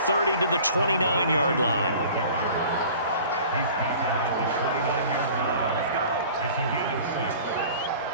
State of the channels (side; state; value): both; inverted; correlation -0.45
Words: to the 29-yard line. He's tackled at the 29-yard line. It's a gain of 6.